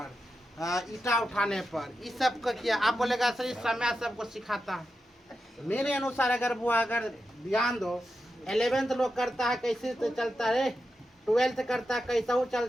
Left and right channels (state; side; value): normal; both; correlation 0.89